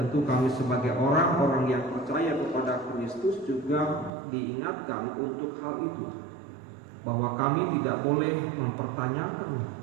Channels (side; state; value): left; drops out; at 4.1 s